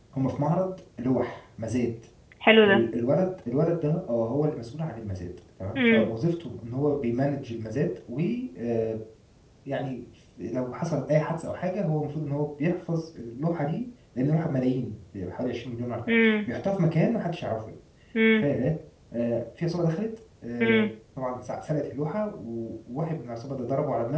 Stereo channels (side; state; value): both; identical; correlation 1.00